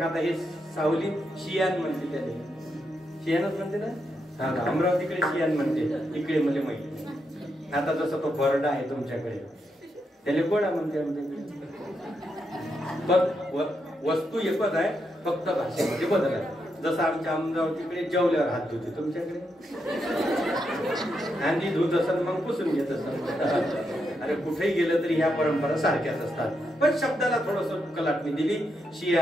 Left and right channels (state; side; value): normal; both; correlation 0.82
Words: आता हे सावली शियान म्हणते, त्याला शियानच म्हणते ना. हा अमरावतीकडे शियान म्हणते, इकडे मला माहिती. आता जसं तो बरडा आहे तुमच्याकडे, त्याला गोडा म्हणते आमच्याकडे. पण वस्तू एकच आहे, फक्त भाषेमध्ये बदल आहे. जसं आमच्या अमरावतीकडे जेवल्यावर हात धुते, तुमच्याकडे आणि धुत असत मग पुसून घेत असत. अरे कुठेही गेलं तरी ह्या परंपरा सारख्याच असतात. पण शब्दाला थोडस कलाटणी दिली.